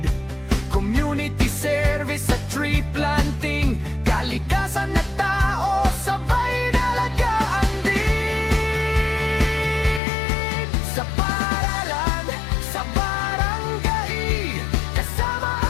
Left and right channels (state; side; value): drops out; right; at 10.0 s